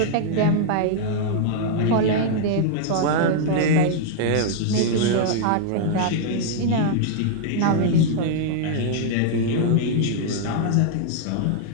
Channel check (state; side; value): different; both; correlation -0.01